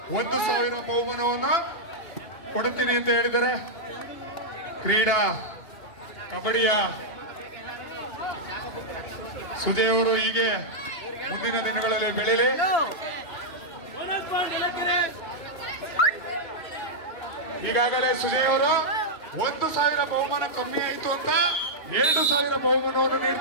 1,000 ಬಹುಮಾನವನ್ನು ಕೊಡುತ್ತೀನಿ ಅಂತ ಹೇಳಿದ್ದಾರೆ. ಕ್ರೀಡಾ ಕಬಡ್ಡಿಯ ಸುಜಯ್ ಅವರು ಹೀಗೆ ಮುಂದಿನ ದಿನಗಳಲ್ಲಿ ಬೆಳೀಲಿ. ಈಗಾಗಲೇ ಸುಜಯ್ ಅವರು 1,000 ಬಹುಮಾನ ಕಮ್ಮಿ ಆಯಿತು ಅಂತ 2,000 ಬಹುಮಾನವನ್ನು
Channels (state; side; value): late; right; 2.8 ms